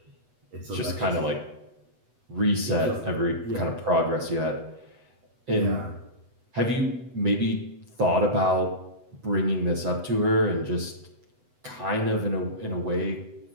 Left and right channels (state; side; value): late; left; 8.0 ms